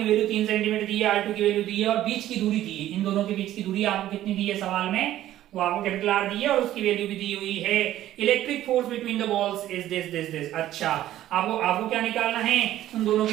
वैल्यू 3 सेंटीमीटर दी है, R2 की वैल्यू दी है और बीच की दूरी दी है। इन दोनों के बीच की दूरी आपको कितनी दी है सवाल में, वो आपको कैपिटल R दी है और उसकी वैल्यू भी दी हुई है। Electric force between the balls is this. अच्छा, आपको क्या निकालना है, उन दोनों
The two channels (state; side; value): quieter; left; 13.3 dB